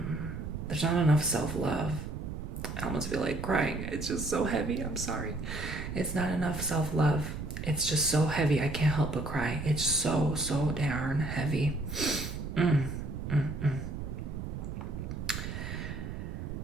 there's not enough self-love. I almost feel like crying. It's just so heavy. I'm sorry. It's not enough self-love. It's just so heavy. I can't help but cry. It's so darn heavy.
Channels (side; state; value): right; noise; rumble, 6 dB below the sound